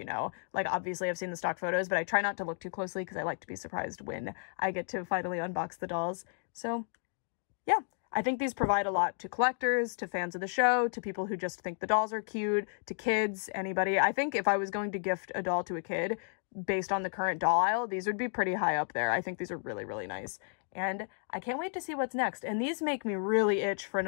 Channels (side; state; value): right; silent; digital silence